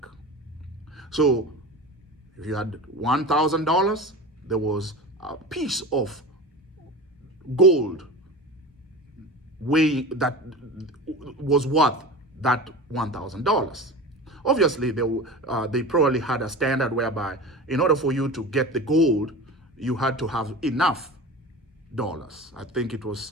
So if you had $1,000, there was a piece of gold that was worth that $1,000. Obviously, they probably had a standard whereby in order for you to get the gold, you had to have enough dollars. I think it was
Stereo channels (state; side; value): normal; both; correlation 0.32